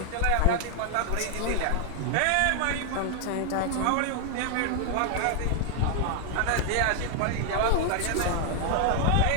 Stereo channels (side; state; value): both; different; correlation 0.00